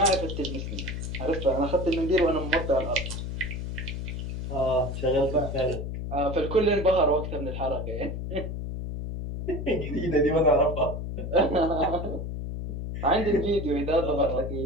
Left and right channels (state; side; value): noise; left; hum, 5 dB below the sound